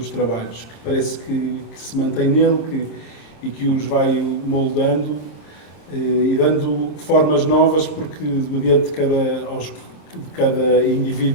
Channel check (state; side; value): late; right; 26 ms